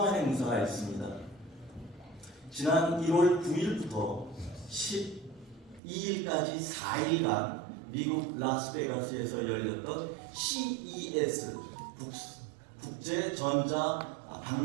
행사가 있습니다. 지난 1월 9일부터 12일까지 4일간 미국 라스베가스에서 열렸던 CES 국제 전자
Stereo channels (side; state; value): left; drops out; at 5.8 s